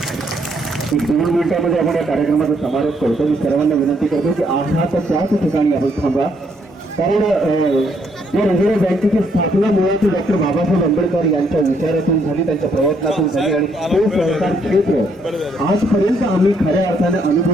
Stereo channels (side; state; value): both; normal; correlation 0.72